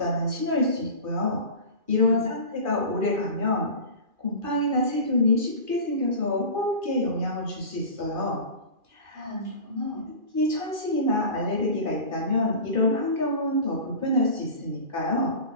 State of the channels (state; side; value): late; left; 2.4 ms